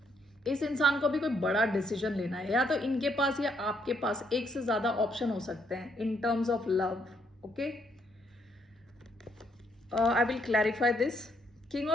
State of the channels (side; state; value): both; normal; correlation 0.72